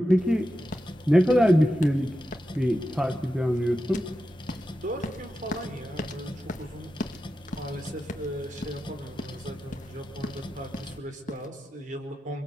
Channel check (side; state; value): both; normal; correlation 0.90